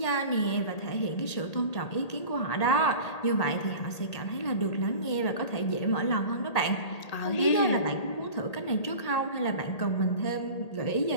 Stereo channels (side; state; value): right; late; 1.8 ms